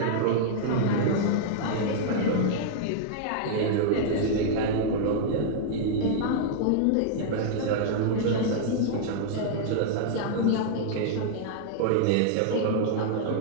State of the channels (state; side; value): different; both; correlation -0.01